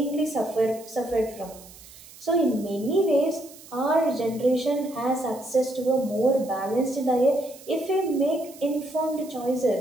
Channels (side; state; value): right; noise; hiss, 20 dB below the sound